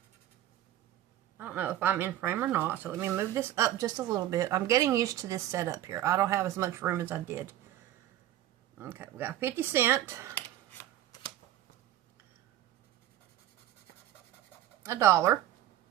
I don't know if I'm in frame or not, so let me move this up just a little bit. I'm getting used to this setup here. I don't have as much room as I did. Okay, we got 50 cents, $1,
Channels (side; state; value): left; quieter; 13.0 dB